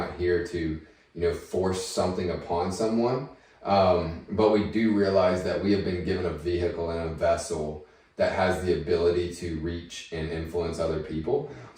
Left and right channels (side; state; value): both; identical; correlation 1.00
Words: here to, force something upon someone. But we do realize that we have been given a vehicle and a vessel that has the ability to reach and influence other people.